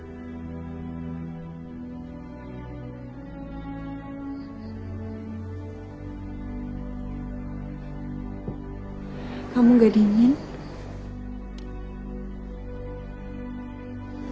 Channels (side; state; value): both; identical; correlation 1.00